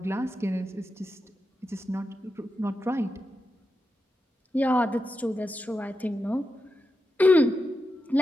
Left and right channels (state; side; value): normal; both; correlation 0.88